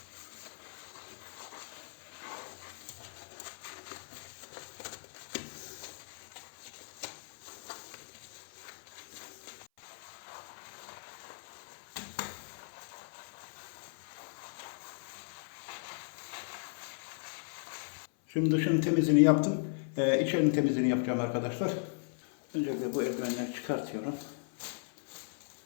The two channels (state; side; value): silent; right; 53 dB below the other